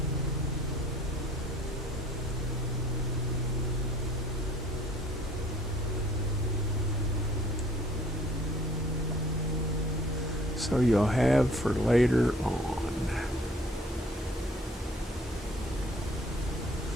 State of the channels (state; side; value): normal; both; correlation 0.56